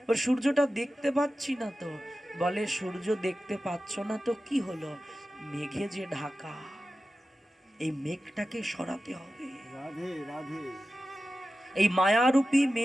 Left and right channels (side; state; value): both; normal; correlation 0.94